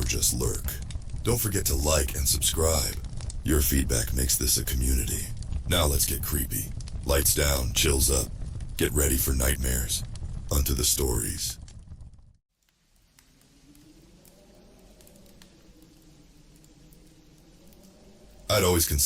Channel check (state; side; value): identical; both; correlation 1.00